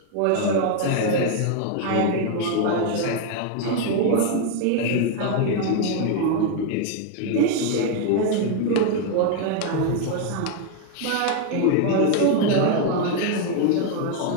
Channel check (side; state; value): both; different; correlation 0.01